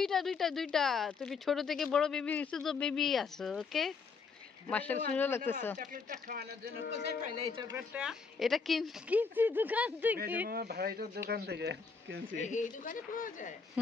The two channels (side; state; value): right; quieter; 5.1 dB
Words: তুমি ছোট থেকে বড় বেবি হইছো তো বেবি আছো। ওকে মাশাআল্লাহ, সুন্দর লাগতেছে। চকলেটটা খাওয়ানোর জন্য কোথায় পাইলে এই চকলেটটা? এটা কিনছি দোকান থেকে। আমার ভাইটার দোকান থেকে কিনছি। এই দোকানে পাওয়া যায়?